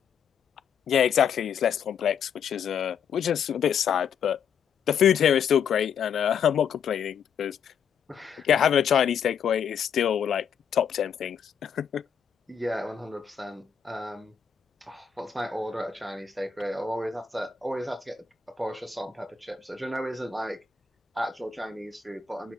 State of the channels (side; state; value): right; quieter; 7.4 dB